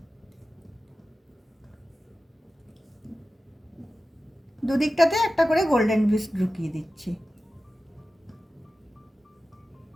দুদিকটাতে একটা করে গোল্ডেন বিটস ঢুকিয়ে দিচ্ছি।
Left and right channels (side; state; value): both; normal; correlation 0.94